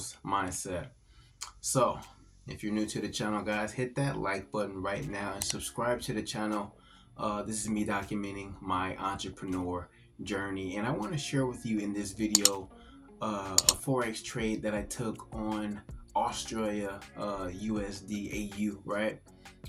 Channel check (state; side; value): identical; both; correlation 1.00